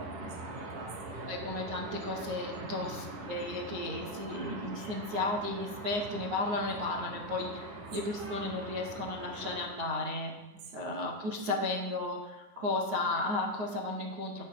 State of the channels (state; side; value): late; left; 9.6 ms